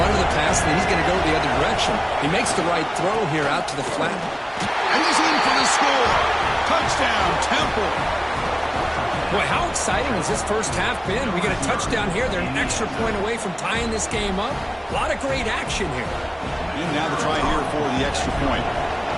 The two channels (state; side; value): identical; both; correlation 1.00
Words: or the pass, and then he's going to go the other direction. He makes the right throw here out to the flat. And he's in for the score. Touchdown, Temple. Boy, how exciting has this first half been? We get a touchdown here. They're an extra point away from tying this game up. A lot of great action here. And now the try here for the extra point.